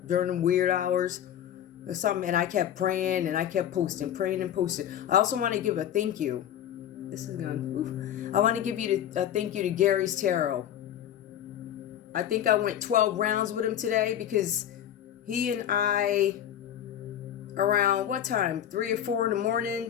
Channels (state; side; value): quieter; right; 10.5 dB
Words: during them weird hours or something, and I kept praying, and I kept posting, praying and posting. I also want to give a thank you. This is going, I want to give you a thank you to Gary's Tarot. I think I went 12 rounds with him today because he and I, around what time? 3 or 4 in the